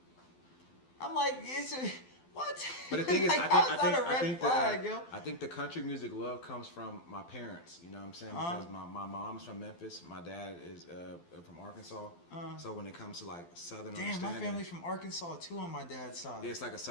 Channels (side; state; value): right; late; 12 ms